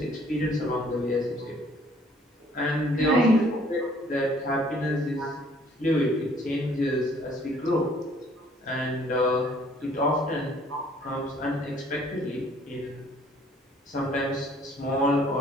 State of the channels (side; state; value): both; normal; correlation 0.59